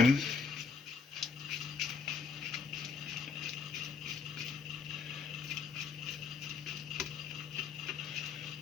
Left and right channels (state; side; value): quieter; right; 4.9 dB